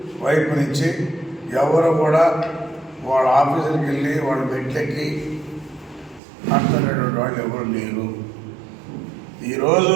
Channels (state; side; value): drops out; left; at 6.2 s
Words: వైపు నుంచి ఎవరు కూడా వాళ్ళ ఆఫీసులకు వెళ్ళి వాళ్ళ బెడ్లెక్కి మాట్లాడేటువంటి వాళ్ళు ఎవరు లేరు. ఈరోజు